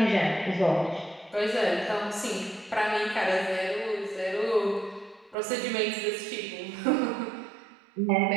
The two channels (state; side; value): drops out; left; at 5.4 s